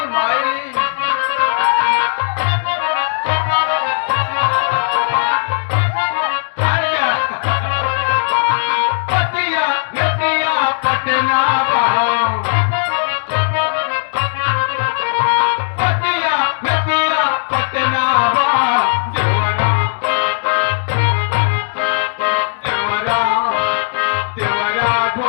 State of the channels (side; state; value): right; silent; digital silence